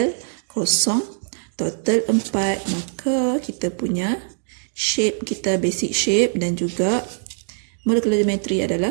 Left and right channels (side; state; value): left; silent; 64 dB below the other